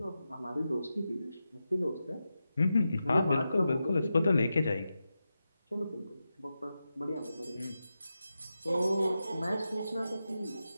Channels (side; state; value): both; inverted; correlation -0.90